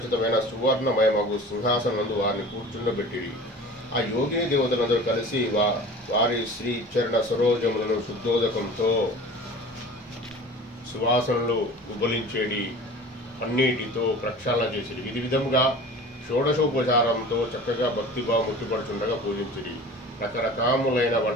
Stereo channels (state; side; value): normal; both; correlation 0.40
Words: సువర్ణమయమగు సింహాసనం నందు వారిని కూర్చుండబెట్టిరి. ఆ యోగిని దేవతలందరూ కలిసి వారి శ్రీ చరణ సరోజములను శుద్ధోదకంతో సువాసనలు ఉబలించేడి అన్నిటితో ప్రక్షాళన చేసిరి. ఇది విధంగా షోడశోపచారంతో చక్కగా భక్తిభావం ముట్టిపడుచుండగా పూజించిరి. రకరకాములైన